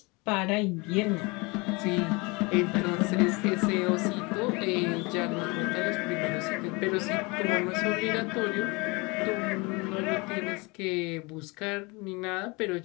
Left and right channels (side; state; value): right; quieter; 26.9 dB